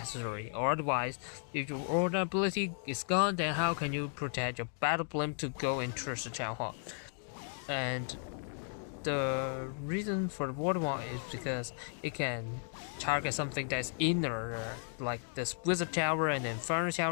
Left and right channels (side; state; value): right; silent; 54 dB below the other